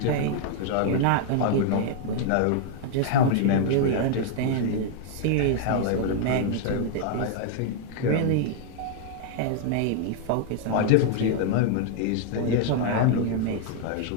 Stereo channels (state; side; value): different; both; correlation 0.00